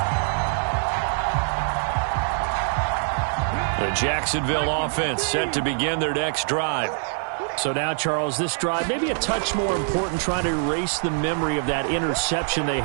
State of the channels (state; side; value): silent; left; digital silence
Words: The Jacksonville offense set to begin their next drive. So now, Charles, this drive maybe a touch more important, trying to erase the memory of that interception they